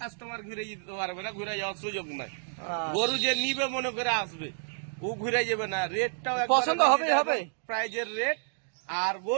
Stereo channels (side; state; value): left; silent; digital silence